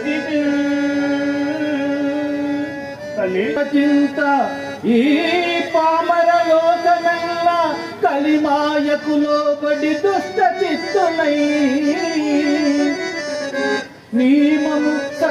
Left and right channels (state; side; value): identical; both; correlation 1.00